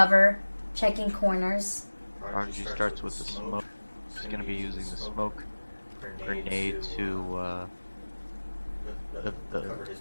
checking corners. Prodigy starts with the smoke. He's going to be using the smoke grenade to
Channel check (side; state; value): both; inverted; correlation -1.00